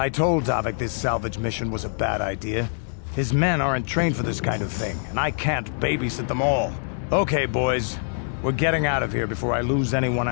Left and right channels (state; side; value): silent; right; digital silence